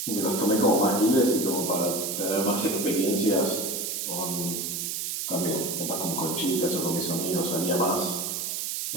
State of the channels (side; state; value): right; noise; hiss, 3 dB below the sound